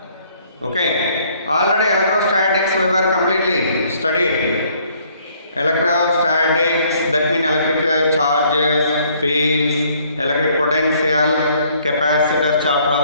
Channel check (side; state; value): both; inverted; correlation -0.63